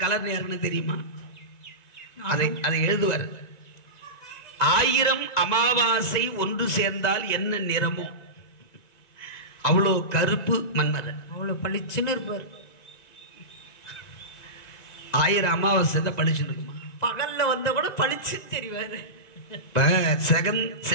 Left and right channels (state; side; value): late; right; 2.0 ms